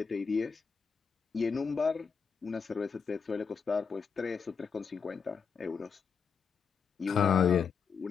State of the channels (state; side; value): quieter; right; 6.0 dB